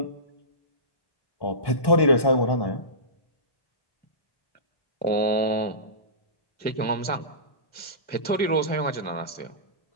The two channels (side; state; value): right; late; 1.1 ms